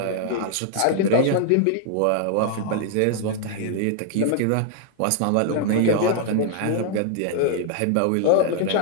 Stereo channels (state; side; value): different; both; correlation -0.01